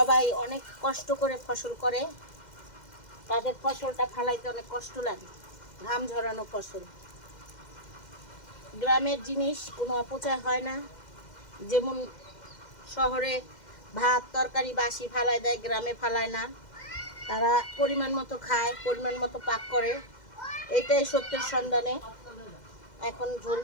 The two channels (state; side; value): late; right; 2.1 ms